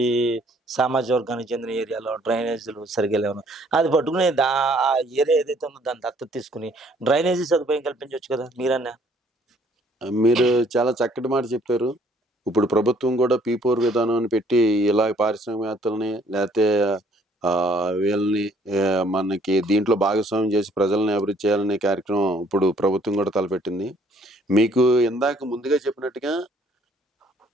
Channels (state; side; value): normal; both; correlation 0.62